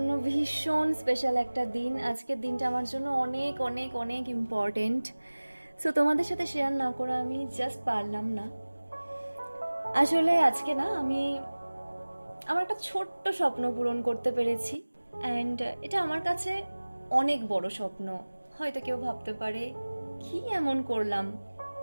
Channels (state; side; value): inverted; both; correlation -1.00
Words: ভীষণ স্পেশাল একটা দিন। আজকের দিনটা আমার জন্য অনেক অনেক অনেক ইম্পর্টেন্ট। সো তোমাদের সাথে শেয়ার না করে আমি জাস্ট পারলাম না। আসলে আজকে না আমি আমার একটা ছোট্ট স্বপ্ন পূরণ করতে পেরেছি, অ্যান্ড এটা আমার কাছে অনেক বড় স্বপ্ন। হয়তো কেউ ভাবতে পারে কি এমন করলাম,